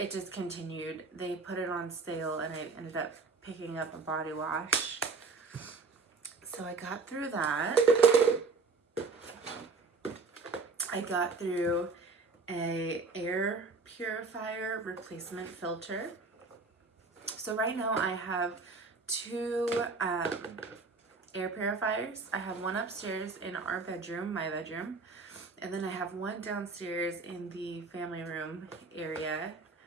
discontinued, they put it on sale and I ended up picking up a body wash. So I got through that. I got through a air purifier replacement filter. So right now I have two air purifiers. I have one upstairs in our bedroom, my bedroom, and then I have one downstairs in the family room area.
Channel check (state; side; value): quieter; left; 4.3 dB